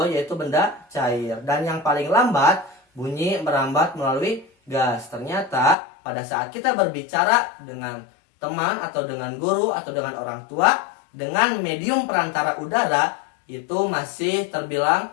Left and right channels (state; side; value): drops out; right; at 5.8 s